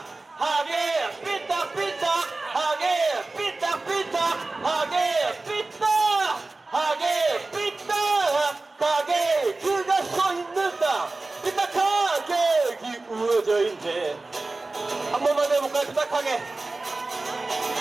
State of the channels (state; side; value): quieter; left; 3.3 dB